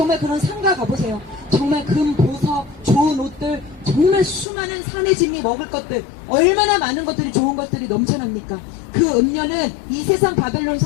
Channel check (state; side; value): drops out; right; at 4.5 s